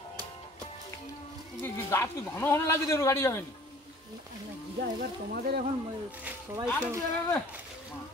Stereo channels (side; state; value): both; normal; correlation 0.51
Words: গাছ কি ঘন ঘন লাগে যে গাড়ি যাবে না এবার তোমাদের এখন সবাই কি বলবে